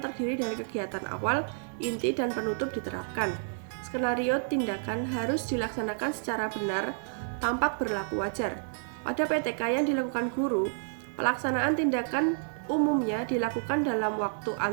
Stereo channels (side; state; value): left; silent; digital silence